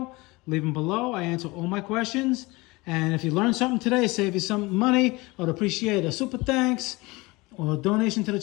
leave them below. I answer all my questions. And if you learned something today, save you some money, I'd appreciate a super thanks or a donation to the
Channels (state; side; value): quieter; right; 23.1 dB